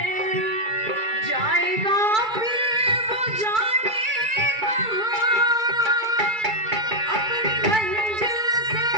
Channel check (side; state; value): left; late; 2.3 ms